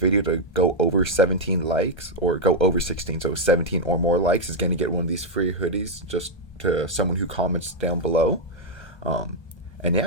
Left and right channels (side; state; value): right; late; 1.3 ms